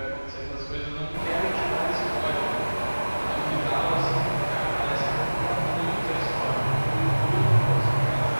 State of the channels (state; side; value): inverted; both; correlation -1.00